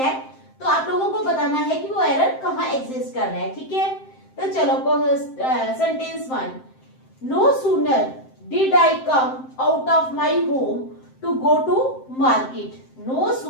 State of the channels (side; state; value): right; late; 7.7 ms